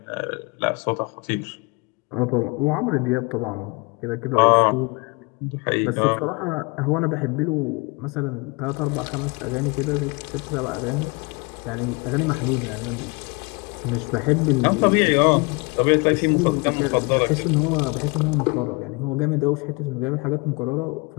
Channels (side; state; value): right; quieter; 28.5 dB